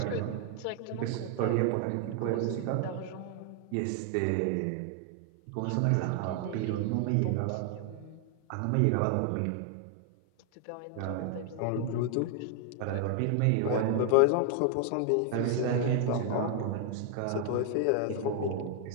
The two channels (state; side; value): different; both; correlation 0.00